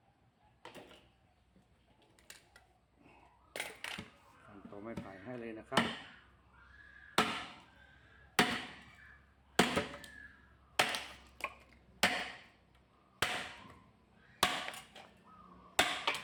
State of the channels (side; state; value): both; identical; correlation 1.00